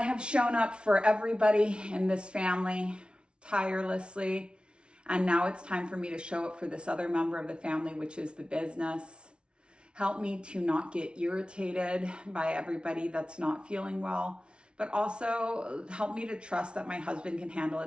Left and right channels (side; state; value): left; late; 0.057 ms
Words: have shown up for everybody in this family tirelessly. And now it's time for me to show up for this other member of the family, which is the business. Help me to not get irritated by everybody that's not feeling well, but also help me to trust that my husband can handle